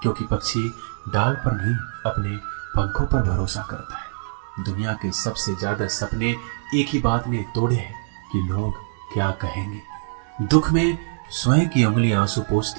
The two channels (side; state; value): left; silent; digital silence